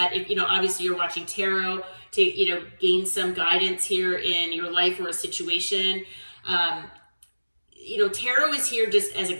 If, obviously you're watching tarot to, gain some guidance here in your life or a situation. Tarot is here just as a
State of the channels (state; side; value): inverted; both; correlation -1.00